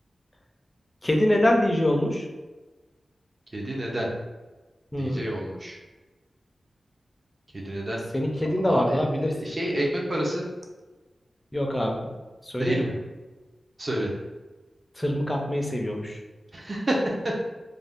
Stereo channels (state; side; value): normal; both; correlation 0.95